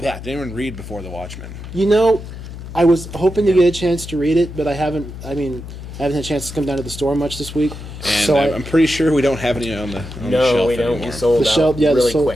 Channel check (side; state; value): left; noise; hum, 11 dB below the sound